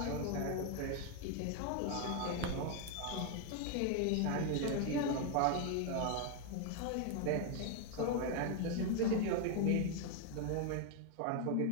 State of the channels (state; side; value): different; both; correlation 0.01